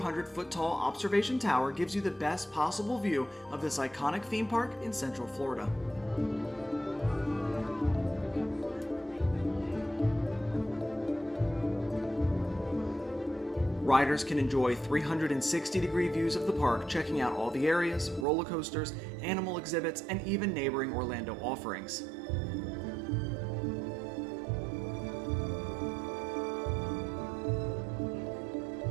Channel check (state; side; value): drops out; left; at 18.2 s